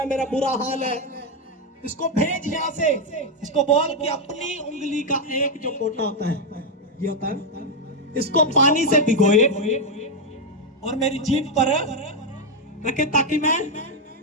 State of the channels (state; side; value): normal; both; correlation 0.03